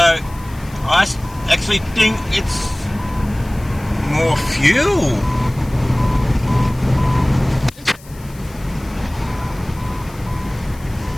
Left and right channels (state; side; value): noise; left; hiss, 23 dB below the sound